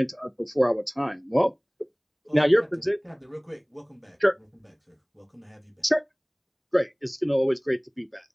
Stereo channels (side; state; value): both; identical; correlation 1.00